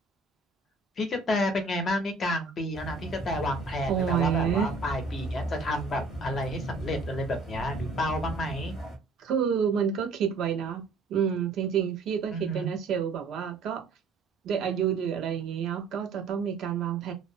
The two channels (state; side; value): quieter; left; 3.5 dB